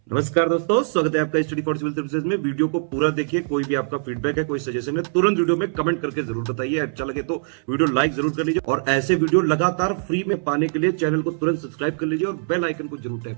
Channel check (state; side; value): silent; left; 60 dB below the other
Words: नमस्कार दोस्तों, स्वागत है आपका स्टडी फॉर सिविल सर्विसेज में। वीडियो को पूरा देखिए। कोई भी आपका फीडबैक है, कोई सजेशन है, तुरंत वीडियो में कमेंट करके जरूर बताइए। अच्छा लगे तो वीडियो लाइक जरूर कर लीजिए और ऐसे वीडियो लगातार फ्री में पाने के लिए चैनल को तुरंत सब्सक्राइब कर लीजिए और बेल आइकन को जरूर